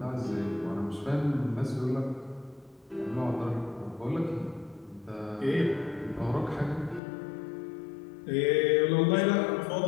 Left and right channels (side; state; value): right; drops out; at 7.0 s